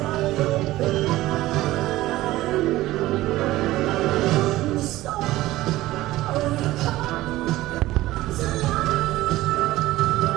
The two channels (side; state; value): left; quieter; 16.8 dB